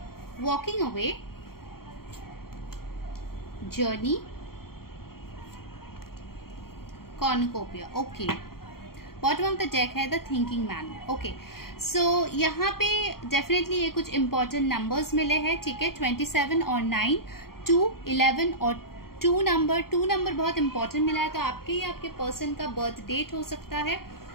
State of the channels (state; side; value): late; right; 0.93 ms